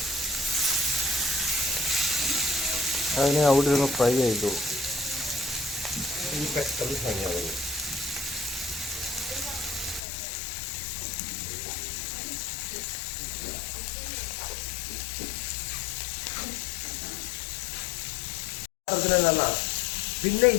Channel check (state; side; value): drops out; right; at 10.0 s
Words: അതിനെ അവിടെ ഇരുന്ന് ഫ്രൈ ആയിക്കോളും. പെട്ടെന്ന് ഫ്രൈ ആവുന്നു. പിന്നെ